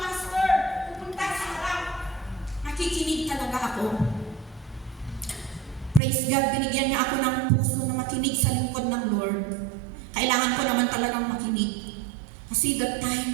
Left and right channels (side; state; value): left; drops out; at 6.0 s